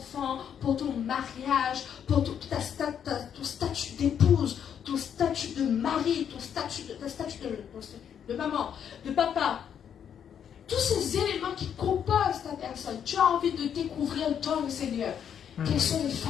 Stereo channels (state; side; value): quieter; right; 8.5 dB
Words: pour ton mariage, pour ton statut d'épouse, ton statut de mari, ton statut de maman, de papa, tous ces éléments qui composent ta personne, tu as envie de découvrir dans le Seigneur. Quelles sont les